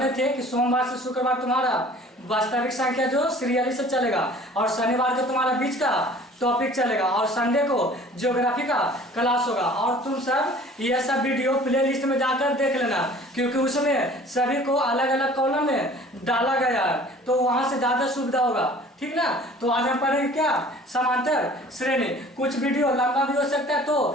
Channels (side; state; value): both; normal; correlation 0.48